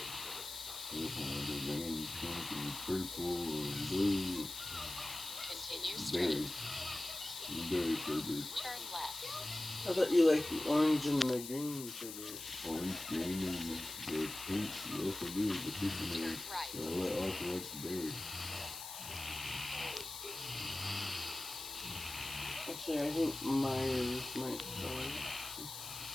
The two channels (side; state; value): left; noise; hiss, 9 dB below the sound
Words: Continue straight. Turn left. I thought you liked the orange and the green sugar. Orange, green, and the pink. Yes, I do. The pink and Turn right. I also like the berry. Actually, I think Myers might try.